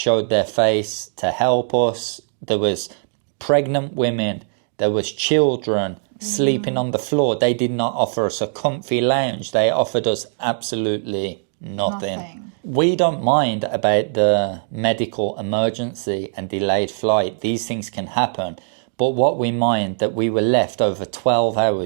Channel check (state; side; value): silent; left; digital silence